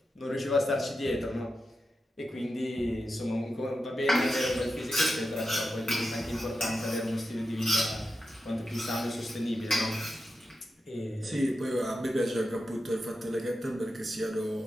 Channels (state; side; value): normal; both; correlation 0.90